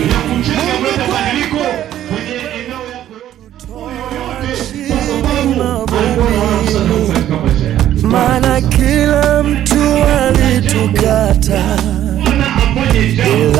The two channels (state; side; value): quieter; left; 12.0 dB